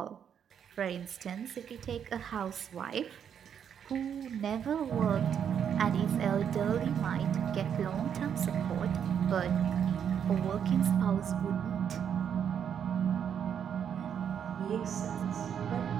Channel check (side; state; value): left; quieter; 8.3 dB